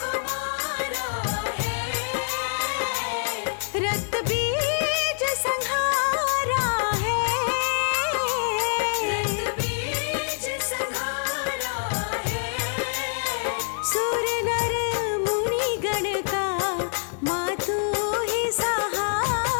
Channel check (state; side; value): silent; right; digital silence